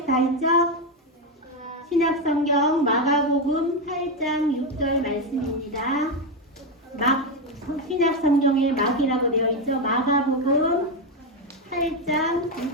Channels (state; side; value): normal; both; correlation 0.08